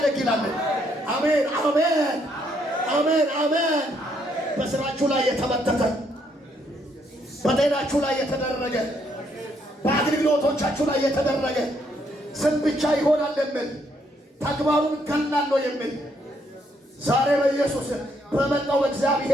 አሜን አሜን አሜን አሜን። በስራችሁ ላይ የተመተተ፣ በጤናችሁ ላይ የተደረገ፣ በአገልግሎቶቻችሁ ላይ የተደረገ ስም ብቻ ይሆናል የሚል ተግባሩን ገላለሁ የሚል ዛሬ በኢየሱስ በመጣው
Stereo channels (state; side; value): normal; both; correlation 0.72